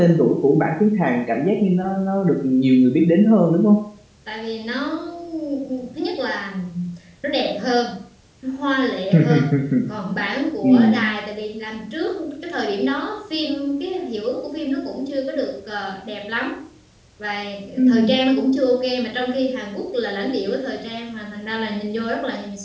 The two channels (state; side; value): identical; both; correlation 1.00